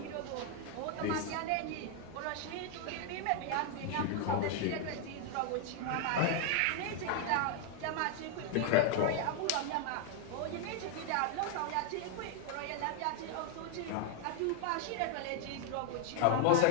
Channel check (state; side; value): different; both; correlation 0.00